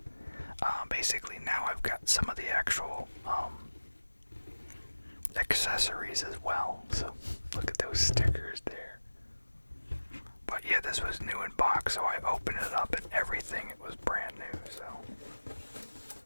basically now I've got some of the actual accessories as well. So look at those stickers there. But yeah, this was new in box, so I opened it up and everything, it was brand new.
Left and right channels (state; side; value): inverted; both; correlation -1.00